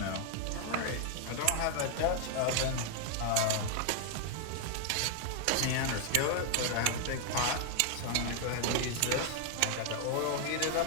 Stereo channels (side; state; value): both; different; correlation 0.00